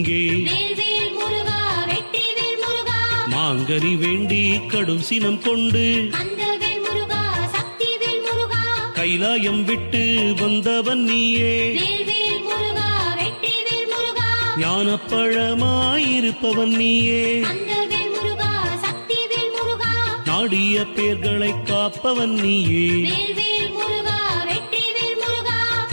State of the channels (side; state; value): both; inverted; correlation -1.00